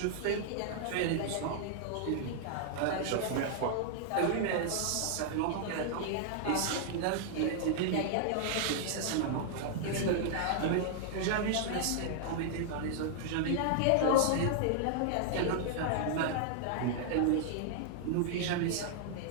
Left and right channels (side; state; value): both; different; correlation -0.01